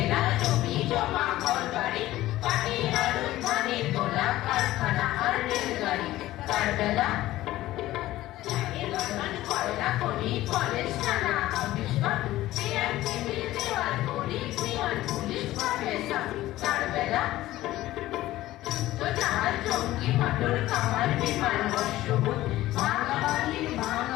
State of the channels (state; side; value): quieter; right; 15.9 dB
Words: জমি জমা ঘরবাড়ি পাটি আলু ধানে তোলা কারখানা আর রেলগাড়ি তার বেলা কয়লা খনি কলেজ থানা অফিস টিএমসি দেওয়াল করি পিয়ন পুলিশ প্রফেসর তার বেলা তো জাহাজ জঙ্গি মোটর কামার বিমান বর্ষবোধ